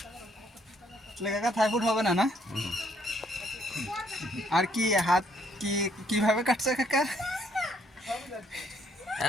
কাকা থাই ফুড হবে না না আর কি হাত কি কিভাবে কাটছে কাকা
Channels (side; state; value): both; normal; correlation 0.68